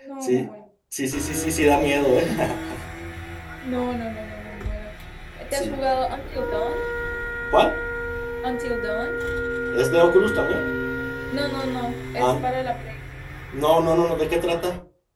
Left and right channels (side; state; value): both; identical; correlation 1.00